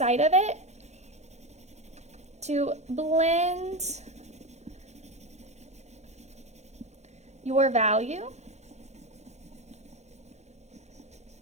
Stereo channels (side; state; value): left; late; 0.33 ms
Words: of it to blend your value